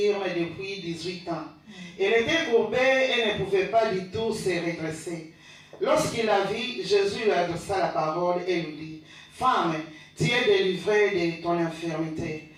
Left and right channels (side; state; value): both; identical; correlation 1.00